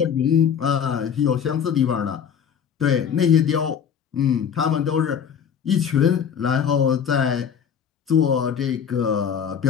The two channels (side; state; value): right; quieter; 7.9 dB